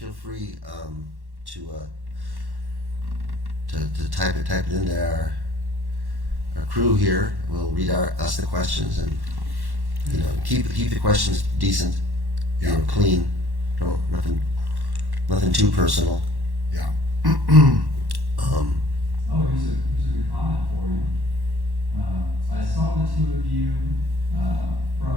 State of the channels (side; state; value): left; late; 1.1 ms